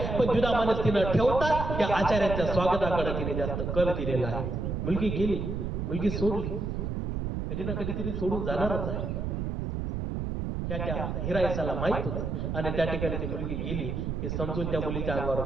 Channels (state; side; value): noise; right; rumble, 2 dB below the sound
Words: पण द्विधा मनस्थिती न ठेवता त्या आचार्याच्या स्वागताकडे तिने जास्त कल दिलेला आहे. मुलगी गेली, मुलगी सोडली, कधी ना कधीतरी सोडून जाणारच आहे त्या हिरायसाला माहित होतं. आणि त्या ठिकाणी ती मुलगी गेली हे समजून त्या मुलीच्या